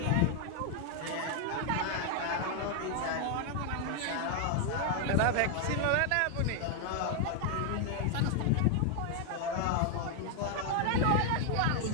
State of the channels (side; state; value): both; different; correlation 0.00